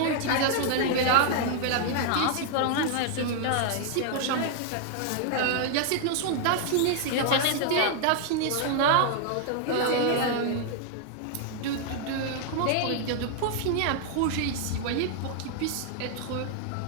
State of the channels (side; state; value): both; different; correlation 0.00